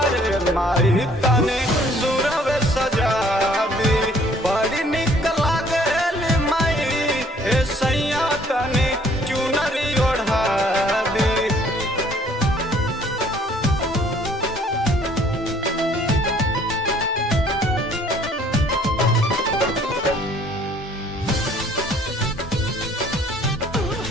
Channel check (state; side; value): normal; both; correlation 0.59